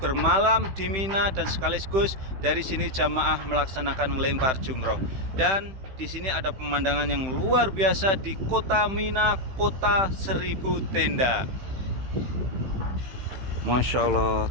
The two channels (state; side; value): late; left; 15 ms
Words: bermalam di Mina, dan sekaligus dari sini jamaah melaksanakan lempar jumroh. Dan di sini ada pemandangan yang luar biasa di kota Mina, Kota Seribu Tenda. Masya Allah,